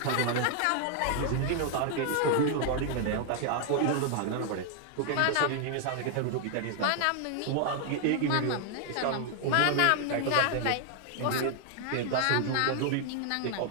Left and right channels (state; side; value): different; both; correlation 0.00